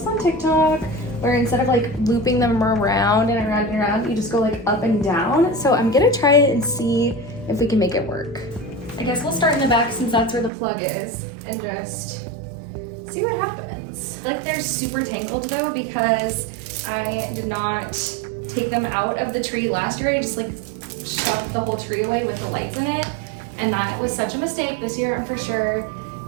on TikTok where instead of like looping them around and around and around, you just go like up and down. So I'm gonna try it and see if we can make it work. I guess we'll start in the back since that's where the plug is and just see what happens. Like they're super tangled though because I did not take them out of the tree last year. I just like shoved the whole tree away with the lights in it, and that was such a mistake. This year I'm for sure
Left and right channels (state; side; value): drops out; left; at 10.5 s